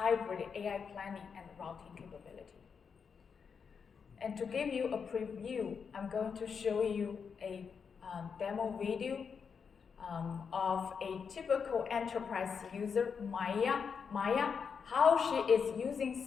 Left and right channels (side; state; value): right; quieter; 6.2 dB